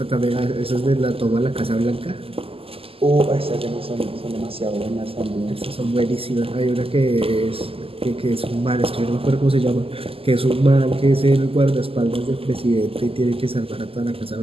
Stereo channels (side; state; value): left; late; 0.27 ms